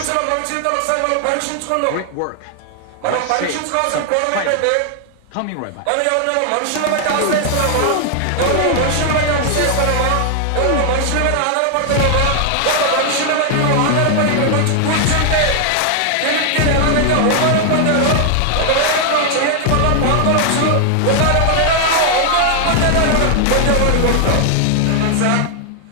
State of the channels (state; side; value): different; both; correlation 0.00